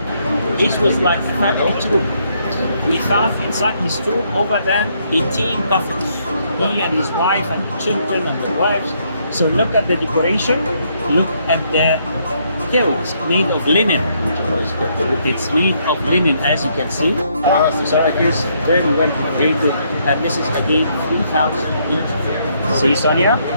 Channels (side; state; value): both; inverted; correlation -0.72